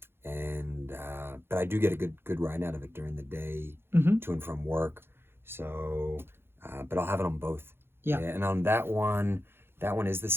But I do get a good ride out of it during the day, to and from work. So, but I'll have it on both. Yeah. And on that one is the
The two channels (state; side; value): late; left; 0.11 ms